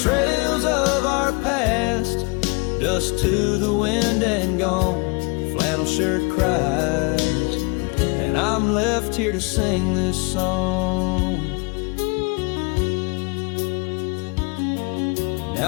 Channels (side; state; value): right; quieter; 30.5 dB